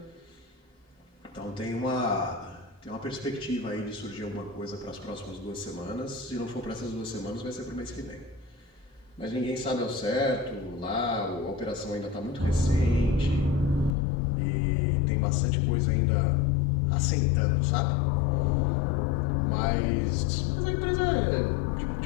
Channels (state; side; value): drops out; right; at 14.0 s